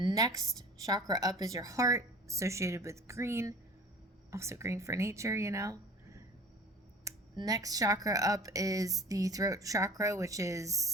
chakra up is your heart, associated with green, also green for nature, you know. Next chakra up is the throat chakra, which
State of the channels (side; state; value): both; normal; correlation 0.43